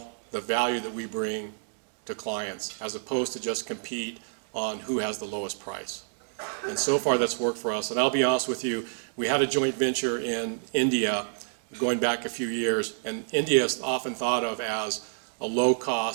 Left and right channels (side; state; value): left; silent; digital silence